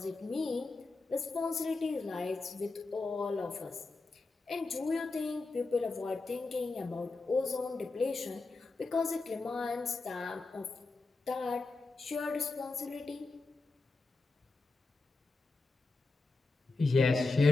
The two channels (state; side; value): quieter; right; 3.6 dB